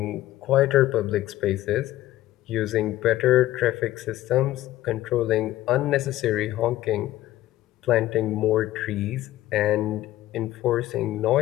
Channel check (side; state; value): right; quieter; 15.0 dB